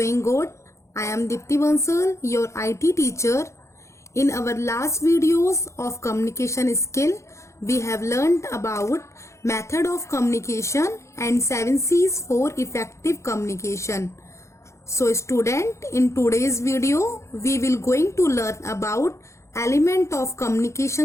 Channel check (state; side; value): late; right; 0.14 ms